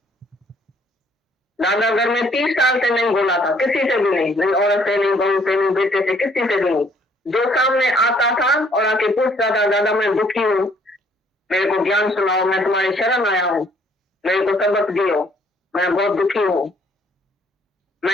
दादा घर में 30 साल से नहीं बोला था, किसी से भी नहीं, नहीं औरत से, नहीं बहू से, नहीं बेटे से, किसी से भी नहीं। जो सामने आता था और आके पूछता था, दादा मैं दुखी हूँ, मेरे को ज्ञान सुनाओ, मैं तुम्हारी शरण आया हूँ, मेरे को सबक दियो, मैं बहुत दुखी हूँ,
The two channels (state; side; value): normal; both; correlation 0.63